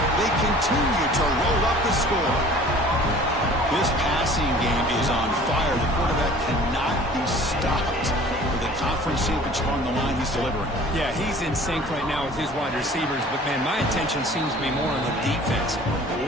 They continue to roll up the score. This passing game is on fire. The quarterback cannot be stopped. For the conference championship on the line, he's delivering. Yeah, he's in sync right now with his wide receivers. But, man, my attention seems to be more on the defense.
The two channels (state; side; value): normal; both; correlation 0.48